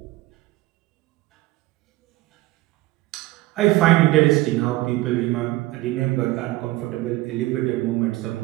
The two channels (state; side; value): quieter; left; 18.4 dB